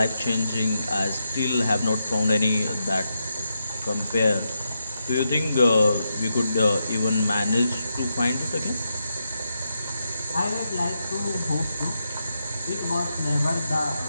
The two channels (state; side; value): inverted; both; correlation -0.84